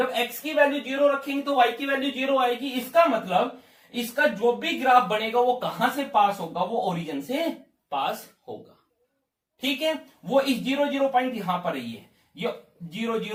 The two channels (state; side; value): identical; both; correlation 1.00